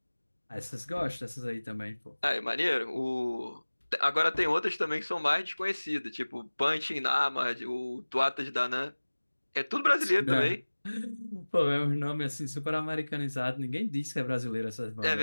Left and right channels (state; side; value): inverted; both; correlation -1.00